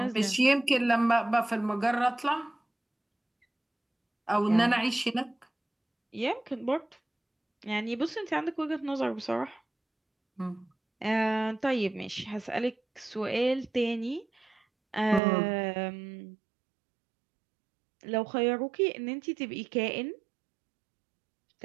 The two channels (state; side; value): drops out; left; at 15.2 s